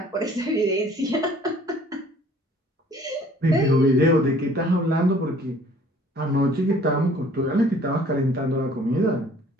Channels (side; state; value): both; normal; correlation 0.55